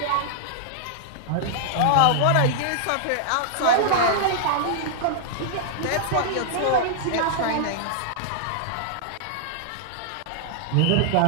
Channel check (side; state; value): both; different; correlation -0.01